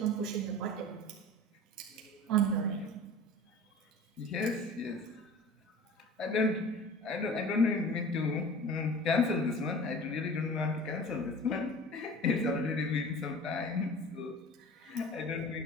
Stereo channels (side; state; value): both; normal; correlation 0.40